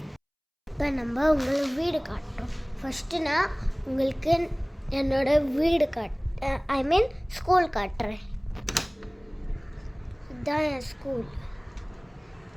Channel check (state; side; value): identical; both; correlation 1.00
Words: இப்போ நம்ம உங்களுக்கு வீடு காட்டுறோம். ஃபஸ்ட்டு நான் உங்களுக்கு என்னோட வீடு ஸ்கூல் காட்டுறேன். இதுதான் என் ஸ்கூல்.